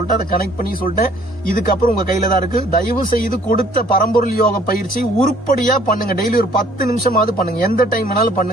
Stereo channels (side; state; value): both; normal; correlation 0.58